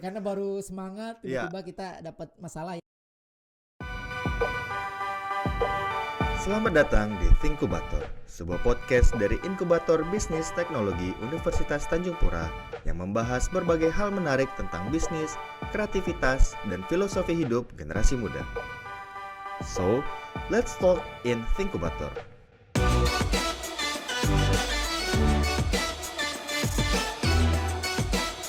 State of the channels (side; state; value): both; identical; correlation 1.00